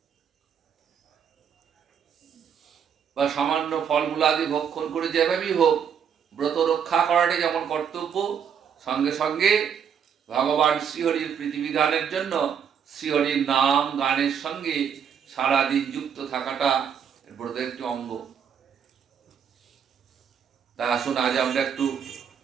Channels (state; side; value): quieter; left; 7.7 dB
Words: বা সামান্য ফলমূলাদি ভক্ষণ করে যেভাবেই হোক, ব্রত রক্ষা করাটাই যেমন কর্তব্য, সঙ্গে সঙ্গে ভগবান শ্রীহরির প্রীতিবিধানের জন্য শ্রীহরির নাম গানের সঙ্গে সারাদিন যুক্ত থাকাটা ব্রতের একটি অঙ্গ। তা আসুন আজ আমরা একটু